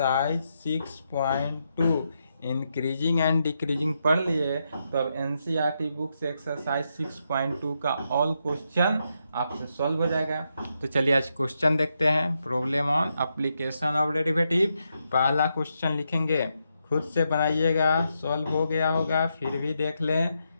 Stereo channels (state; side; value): inverted; both; correlation -0.82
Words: 6.2। इंक्रीजिंग एंड डिक्रीजिंग पढ़ लिए तो अब एनसीईआरटी बुक से एक्सरसाइज 6.2 का ऑल क्वेश्चन आपसे सॉल्व हो जाएगा। तो चलिए आज क्वेश्चन देखते हैं। Problem on application of derivative. पहला क्वेश्चन लिखेंगे, खुद से बनाइएगा, सॉल्व हो गया होगा फिर भी देख लें।